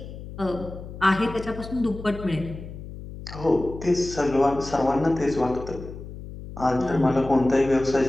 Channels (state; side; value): noise; left; hum, 12 dB below the sound